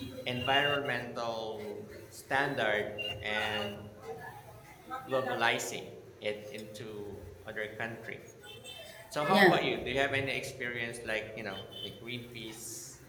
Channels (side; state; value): both; identical; correlation 1.00